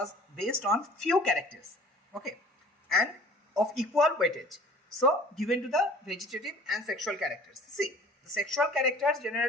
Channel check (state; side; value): normal; both; correlation 0.49